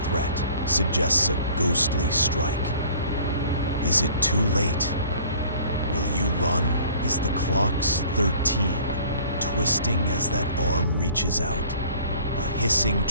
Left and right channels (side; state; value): both; inverted; correlation -0.50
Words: threat suggests a ghostly strike. Is it too late? Will you run? Is the clock's 13, twisting as that arm reaches out? A hissing